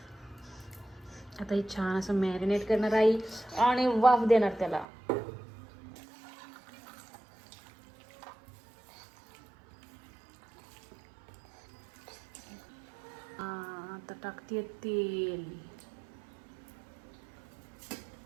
आता हे छान असं मॅरिनेट करणार आई आणि वाफ देणार त्याला. आता टाकते तेल.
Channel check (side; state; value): left; drops out; at 4.9 s